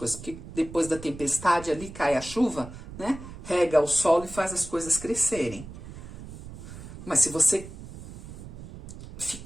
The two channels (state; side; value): noise; right; rumble, 13 dB below the sound